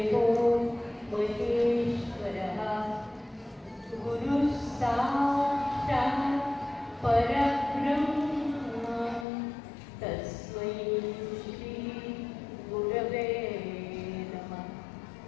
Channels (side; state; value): right; drops out; at 9.2 s